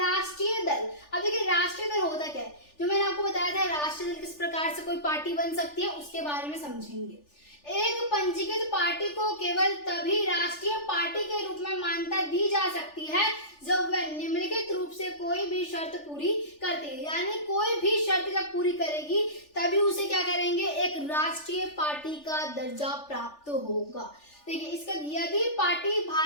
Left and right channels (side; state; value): right; late; 3.4 ms